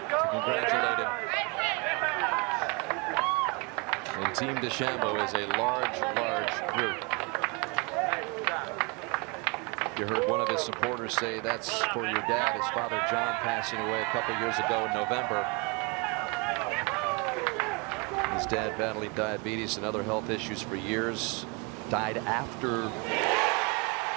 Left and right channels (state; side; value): quieter; left; 29.4 dB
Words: congratulate him. And Team DeChambeau is a large, large group. You heard one of his supporters say that's for your dad, his father John passing away a couple years ago in November. His dad battling diabetes and other health issues for years. Died after